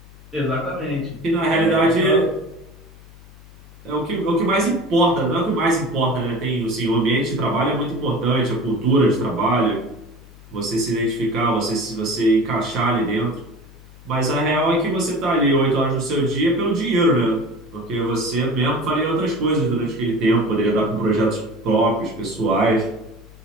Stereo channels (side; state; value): left; noise; hum, 22 dB below the sound